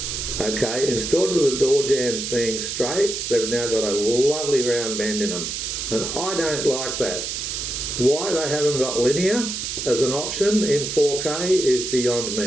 okay, instead of the door jambs being straight, they've now got a lovely round bend in them. And I don't like that. Why they haven't got linear as an option in 4K is beyond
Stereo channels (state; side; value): noise; right; hiss, 4 dB below the sound